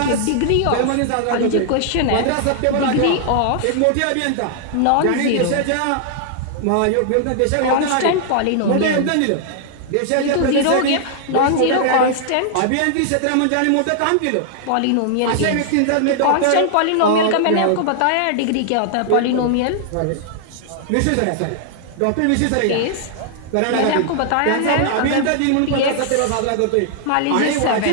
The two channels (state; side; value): different; both; correlation -0.01